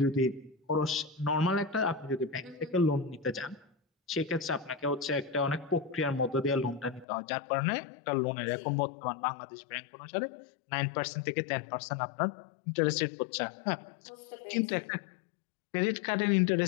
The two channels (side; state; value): right; drops out; at 7.1 s